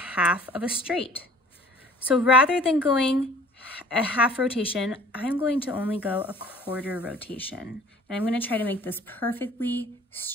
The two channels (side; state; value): both; normal; correlation 0.50